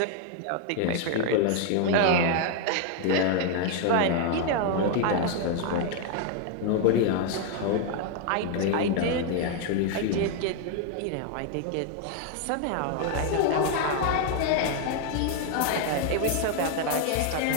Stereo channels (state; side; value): different; both; correlation 0.00